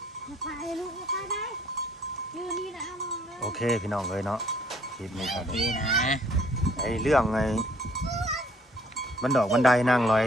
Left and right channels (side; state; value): both; normal; correlation 0.61